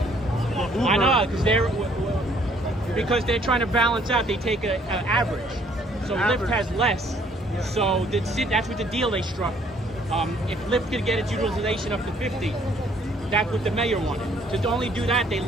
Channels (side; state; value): both; normal; correlation 0.63